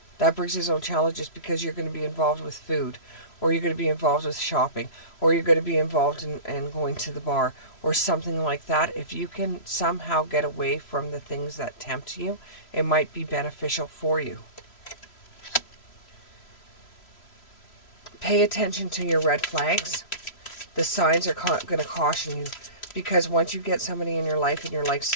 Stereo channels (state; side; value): late; right; 3.0 ms